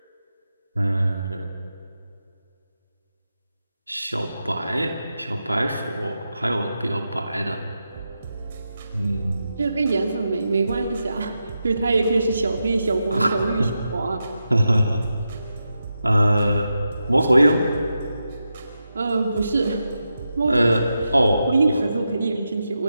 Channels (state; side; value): inverted; both; correlation -0.88